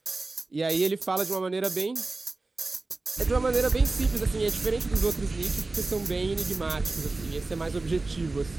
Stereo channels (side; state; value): left; quieter; 3.3 dB